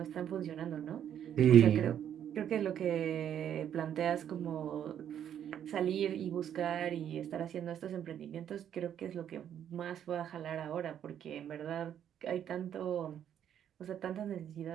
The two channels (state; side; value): quieter; left; 9.7 dB